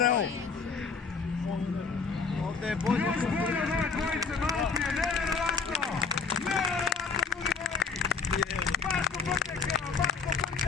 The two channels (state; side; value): quieter; right; 5.0 dB